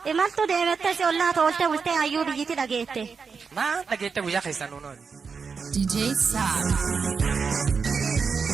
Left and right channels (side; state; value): left; quieter; 5.4 dB